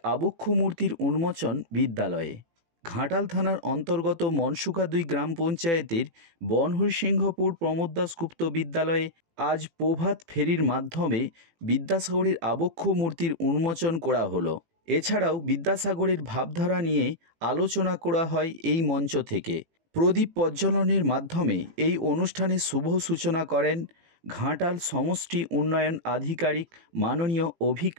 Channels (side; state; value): left; late; 18 ms